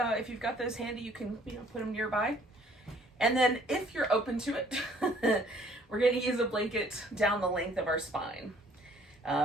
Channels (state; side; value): normal; both; correlation 0.59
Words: If you've got those handy, you can put them nearby. And then if you're open to it, we're going to use a blanket down the length of our spine.